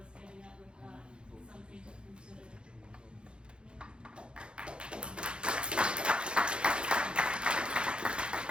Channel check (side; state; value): left; late; 0.054 ms